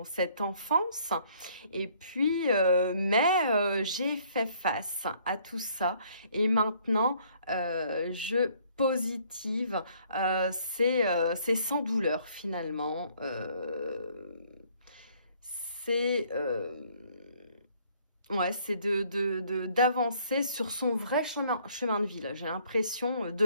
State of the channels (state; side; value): inverted; both; correlation -0.62